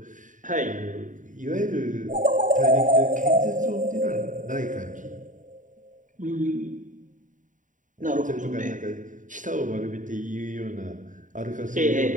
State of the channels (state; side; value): late; left; 0.37 ms